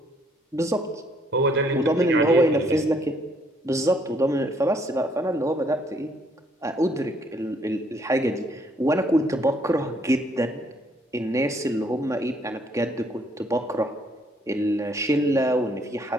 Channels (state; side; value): normal; both; correlation 0.67